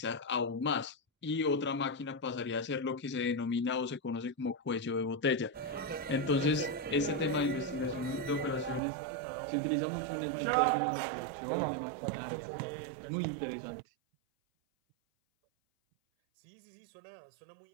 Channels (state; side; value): drops out; left; at 8.8 s